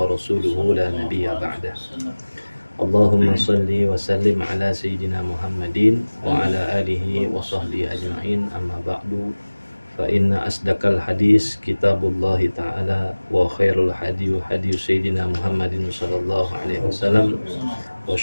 wa rasuluhu la nabiyya ba'dah. Allahumma salli wa sallim ala sayyidina Muhammadin wa ala alihi wa sahbihi ajma'in, amma ba'du, fa inna asdaqal hadis kitabullah ta'ala wa khairul hadiyu hadiyu sayyidina Muhammadin sallallahu alaihi wasallam wa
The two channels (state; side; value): inverted; both; correlation -1.00